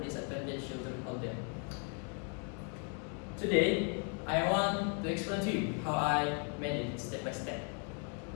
disadvantaged children out there. Today, I want to explain to you how I made it step by step.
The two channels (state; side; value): quieter; right; 38.7 dB